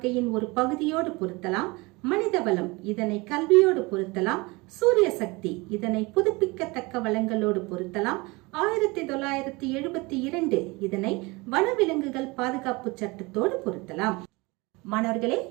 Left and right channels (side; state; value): left; quieter; 24.7 dB